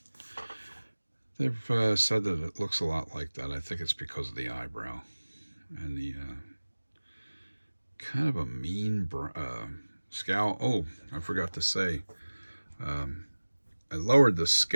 they've said that it looks a lot like that. I think it's because of the eyebrow and the kind of a mean scowl. Oh, I forgot to say, I lowered the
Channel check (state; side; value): inverted; both; correlation -1.00